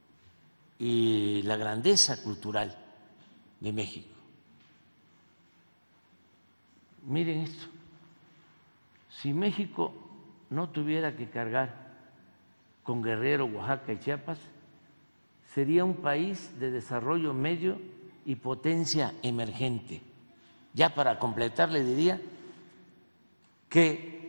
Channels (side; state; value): both; inverted; correlation -1.00